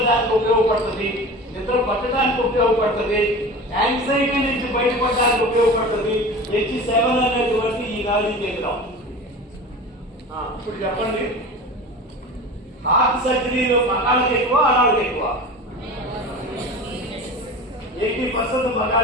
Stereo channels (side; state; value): both; normal; correlation 0.34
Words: ఉపయోగపడుతుంది, నిద్ర పట్టడానికి ఉపయోగపడుతుంది, యాంగ్జైటీ నుంచి బయటపడడానికి ఉపయోగపడుతుంది H7 అనేటువంటి ఈ నాడీ కేంద్రం. ఇప్పుడు చెప్పండి, హార్ట్ సర్జరీలో మగాళ్ళకి ఎక్కువ ఆడాళ్ళకి ఎక్కువ? 80%